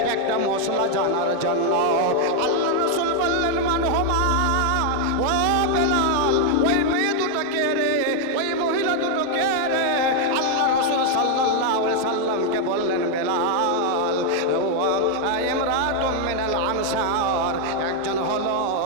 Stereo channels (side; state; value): both; different; correlation 0.00